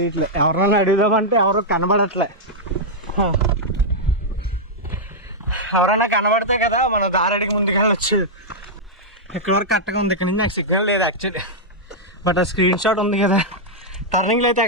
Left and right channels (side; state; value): both; normal; correlation -0.06